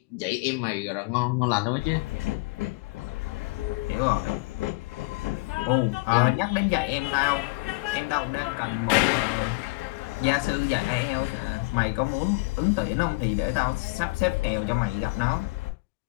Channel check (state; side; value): quieter; right; 26.3 dB